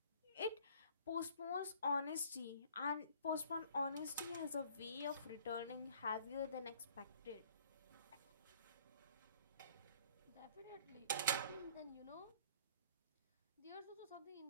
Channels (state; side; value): inverted; both; correlation -0.54